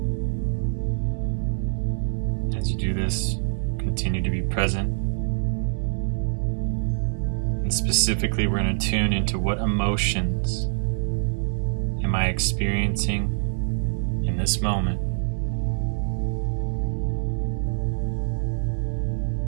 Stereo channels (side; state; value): left; silent; digital silence